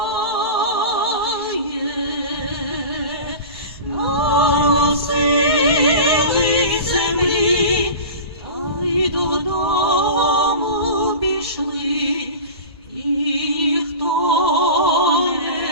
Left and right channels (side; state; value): both; inverted; correlation -0.32